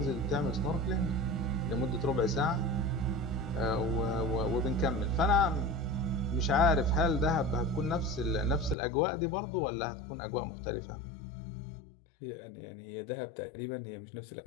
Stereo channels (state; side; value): drops out; right; at 8.8 s